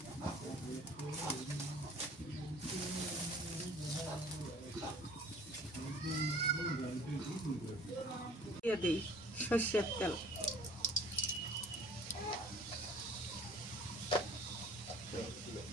দিয়ে দিই সর্ষের তেল।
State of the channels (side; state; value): both; normal; correlation 0.50